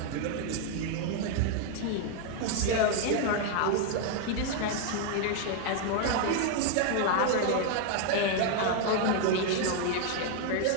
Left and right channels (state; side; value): different; both; correlation 0.00